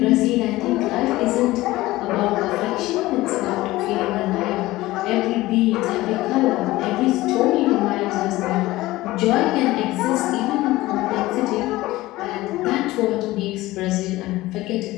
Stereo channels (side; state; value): right; quieter; 18.1 dB